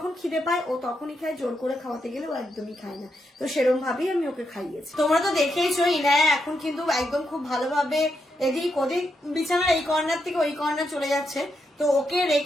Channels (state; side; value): normal; both; correlation 0.82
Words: খিদে পায় ও তখনই খায়, জোর করে খাওয়াতে গেলে ও একদমই খায় না। তো সেরকম ভাবেই আমি ওকে খাইয়েছি। তোমরা তো দেখেইছো ইনায়া এখন কিন্তু একদম খুব ভালোভাবে এদিক ওদিক বিছানার এই কর্নার থেকে ওই কর্নার চলে যাচ্ছে। তো ওকে